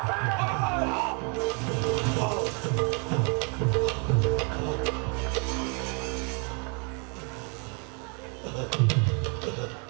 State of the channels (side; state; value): left; quieter; 35.9 dB